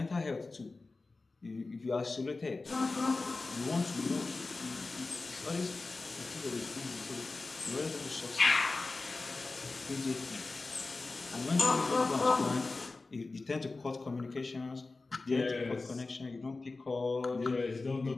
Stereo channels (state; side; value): quieter; right; 3.6 dB